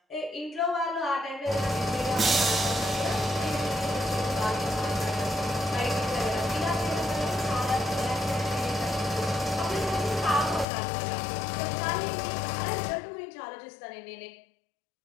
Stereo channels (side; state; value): right; drops out; at 10.7 s